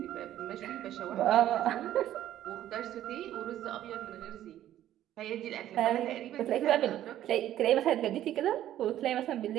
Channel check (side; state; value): left; quieter; 12.4 dB